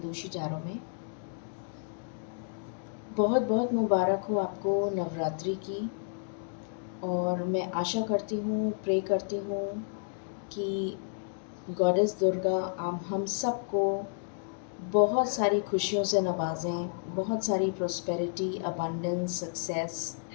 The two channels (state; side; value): silent; right; digital silence